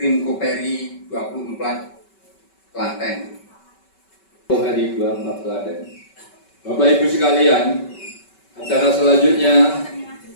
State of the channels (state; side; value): late; right; 5.2 ms